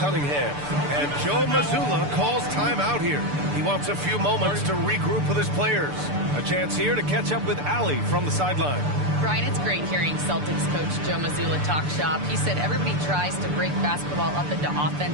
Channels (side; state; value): left; late; 6.8 ms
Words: And Joe Mazzulla calls timeout here. He wants a few moments to regroup with his players. A chance here to catch up with Allie from the sideline. Brian, it's great hearing Celtics coach Joe Mazzulla talk shop. He said everybody tries to break basketball up into offense